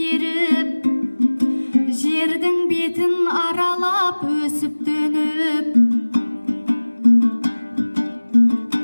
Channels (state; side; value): inverted; both; correlation -1.00